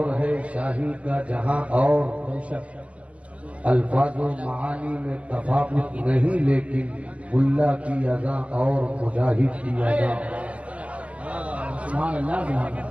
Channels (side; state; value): left; late; 0.065 ms